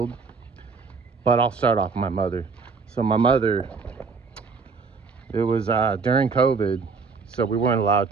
But I'll start off with my mother. So my mother, it was during COVID, so we weren't allowed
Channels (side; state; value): left; quieter; 4.9 dB